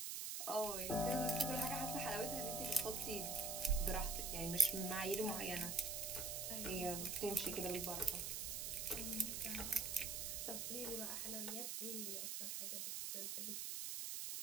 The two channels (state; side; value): noise; right; hiss, 2 dB below the sound